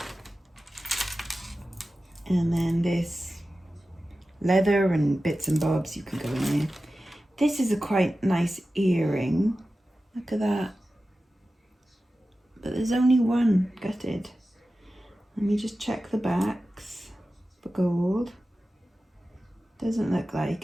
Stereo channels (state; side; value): normal; both; correlation 0.94